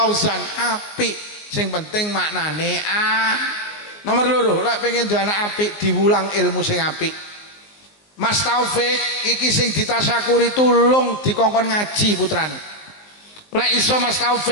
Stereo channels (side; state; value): right; late; 19 ms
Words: Apik. Sing penting maknane Nomor 2 lek pengen duwe anak apik diwulang ilmu sing apik. Mas Taufik iki sing ditasyakuri tulung dikongkon ngaji putrane. Lek iso Mas